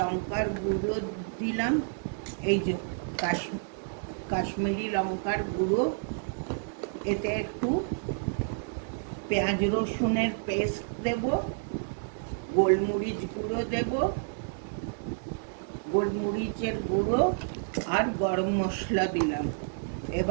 গুঁড়ো দিলাম, এই যে কাশ্মীরি লঙ্কার গুঁড়ো, এতে একটু পেঁয়াজ রসুনের পেস্ট দেব, গোলমরিচ গুঁড়ো দেব, গোলমরিচের গুঁড়ো আর গরম মশলা দিলাম।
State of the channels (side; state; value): left; silent; digital silence